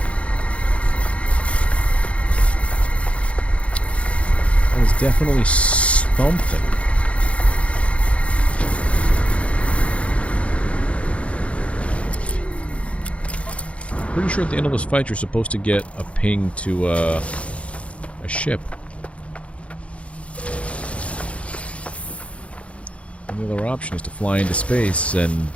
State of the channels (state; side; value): late; right; 0.062 ms